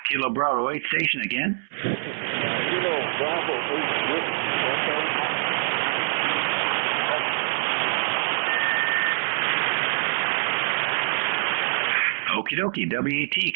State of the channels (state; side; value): silent; left; digital silence